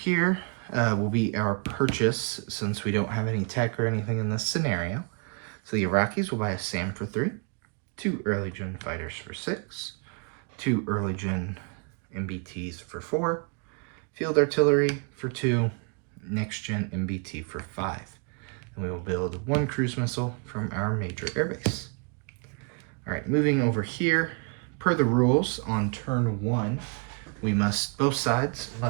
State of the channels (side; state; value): left; quieter; 36.0 dB